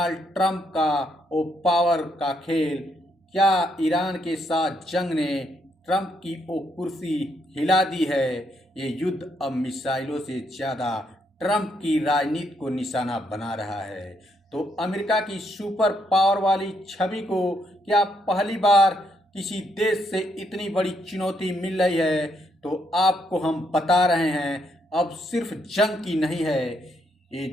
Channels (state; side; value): normal; both; correlation 0.75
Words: ट्रंप का वो पावर का खेल, क्या ईरान के साथ जंग ने ट्रंप की वो कुर्सी हिला दी है? ये युद्ध अब मिसाइलों से ज़्यादा ट्रंप की राजनीति को निशाना बना रहा है। तो अमेरिका की सुपर पावर वाली छवि को क्या पहली बार किसी देश से इतनी बड़ी चुनौती मिल रही है? तो आपको हम बता रहे हैं, अब सिर्फ जंग की नहीं है, ये